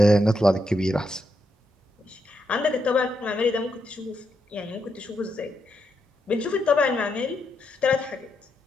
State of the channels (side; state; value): both; normal; correlation 0.81